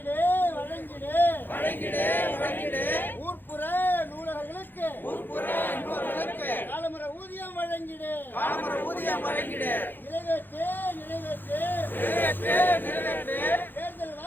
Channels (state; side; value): late; right; 0.094 ms